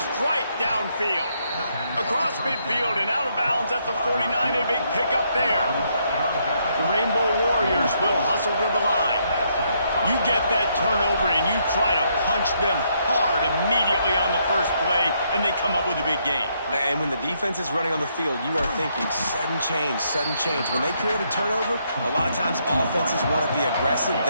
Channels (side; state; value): both; inverted; correlation -0.74